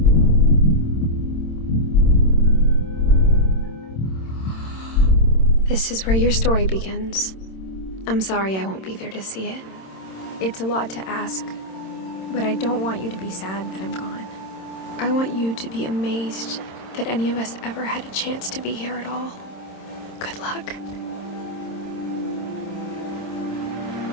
This is where your story begins. I'm sorry I won't be there to see it. It's a lot to ask, but I don't want you to be sad that I'm gone. I want you to be amazed that any of us ever had a chance to be here at all. Good luck.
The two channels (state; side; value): late; right; 26 ms